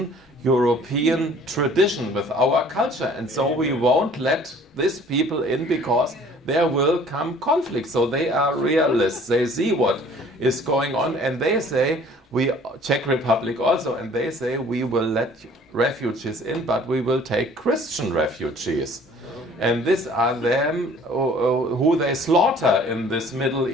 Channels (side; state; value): both; normal; correlation 0.53